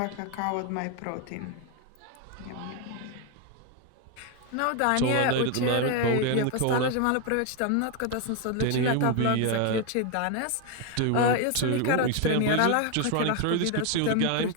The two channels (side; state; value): both; different; correlation 0.01